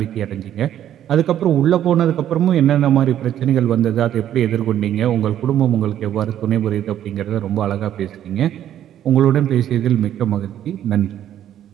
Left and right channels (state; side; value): quieter; left; 11.0 dB